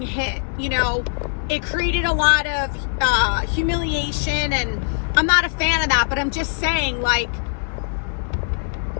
hit, it created a lot of humiliation, and I'm not a fan of that, but I'm just saying, like,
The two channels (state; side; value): silent; right; digital silence